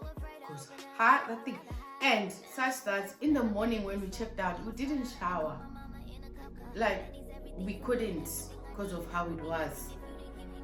Because that thing. And such that in the morning when we checked out, we didn't shower. Like, we couldn't because of how it was.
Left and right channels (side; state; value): both; identical; correlation 1.00